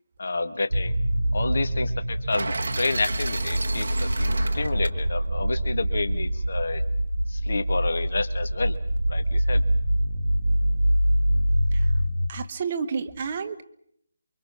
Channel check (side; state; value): both; inverted; correlation -0.97